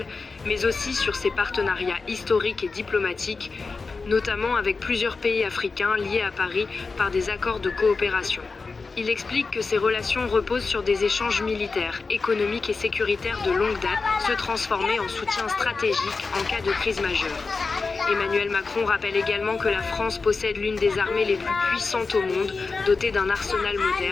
mais aussi sur ses partenariats historiques et diplomatiques, notamment avec plusieurs pays africains liés à Paris par des accords de coopération. Il explique que ces relations reposent sur des échanges militaires, économiques et sécuritaires de longue date, se transformer en soutien stratégique en cas de crise majeure. Emmanuel Macron rappelle également que la France possède l'une des armées les plus puissantes au monde, dotée d'un arsenal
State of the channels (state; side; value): quieter; right; 4.3 dB